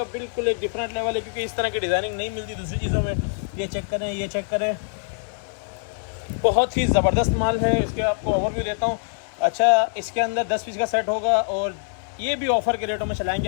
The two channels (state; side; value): silent; right; digital silence